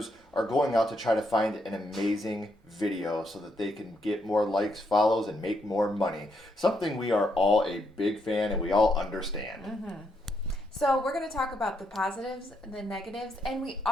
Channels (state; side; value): normal; both; correlation 0.77